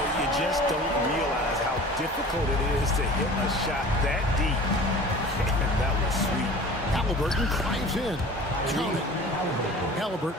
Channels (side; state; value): both; normal; correlation 0.42